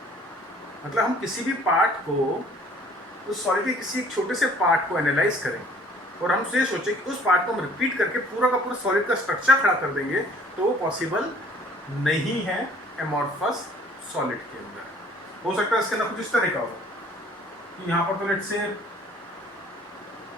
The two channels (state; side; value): normal; both; correlation 0.55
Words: मतलब हम किसी भी पार्ट को, उस सॉलिड के किसी एक छोटे से पार्ट को एनालाइज करें और हम ये सोचें कि उस पार्ट को हम रिपीट करके पूरा का पूरा सॉलिड का स्ट्रक्चर खड़ा कर देंगे, तो वो पॉसिबल नहीं है एमॉर्फस सॉलिड के अंदर. हो सकता है इसके अंदर कुछ इस तरह का हो कि यहाँ पर तो लेट्स से